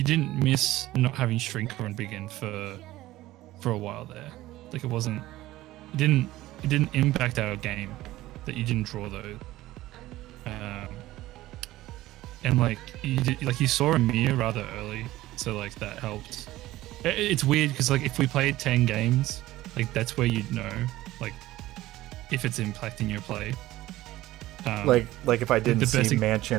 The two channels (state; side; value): quieter; left; 16.4 dB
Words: didn't miss not having Shrinker and Begin for a while there. Like it didn't impact our game that you didn't draw those. And like you saw a mirror rather early, so like that helped. It's weird because like if we played 10 games, like that's where you'd know like if it's impacting your play. Like if I didn't see